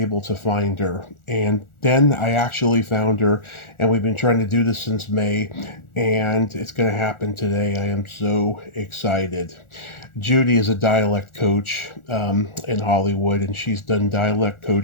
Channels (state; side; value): late; right; 1.4 ms